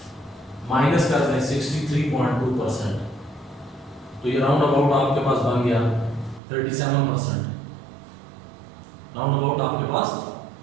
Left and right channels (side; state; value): left; drops out; at 6.4 s